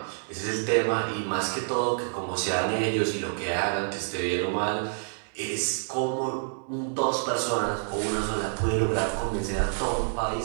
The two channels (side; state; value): left; silent; digital silence